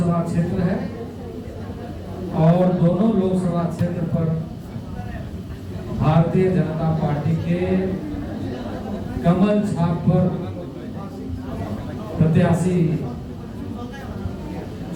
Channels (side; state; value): both; identical; correlation 1.00